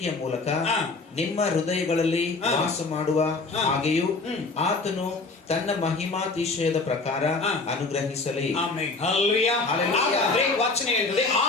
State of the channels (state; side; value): quieter; right; 3.8 dB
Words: ಮೂಲಕ ನಿಮ್ಮ ಹೃದಯಗಳಲ್ಲಿ ವಾಸ ಮಾಡುವ ಹಾಗೆಯೂ ಆತನು ತನ್ನ ಮಹಿಮಾತಿಶಯದ ಪ್ರಕಾರ ಅನುಗ್ರಹಿಸಲಿ. ವಚನ ಹೇಳ್ತದೆ,